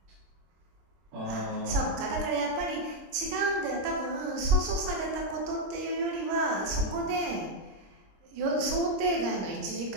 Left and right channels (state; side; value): late; left; 26 ms